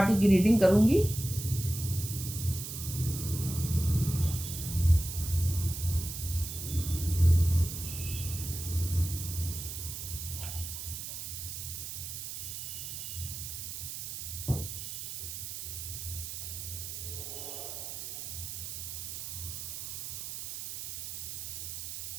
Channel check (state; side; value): noise; right; hiss, 6 dB below the sound